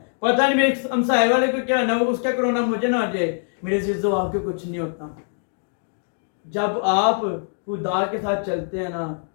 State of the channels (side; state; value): right; silent; 63 dB below the other